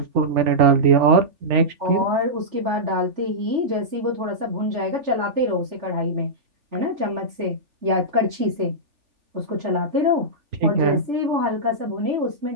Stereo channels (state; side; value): late; left; 3.4 ms